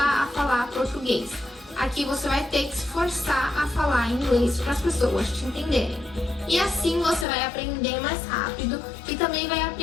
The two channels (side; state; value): right; drops out; at 7.2 s